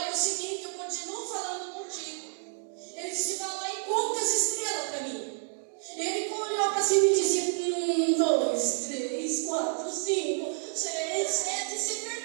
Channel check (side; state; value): left; silent; 58 dB below the other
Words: é o seguinte, eu continuo falando contigo. Ele disse: vai lá e conta as estrelas para mim. Ele olhou para cima e disse: 1, 2, 3, 4, 5, 6, 7. Se